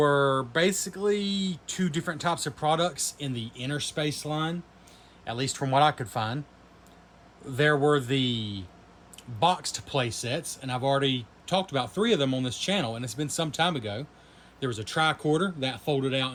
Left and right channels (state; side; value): identical; both; correlation 1.00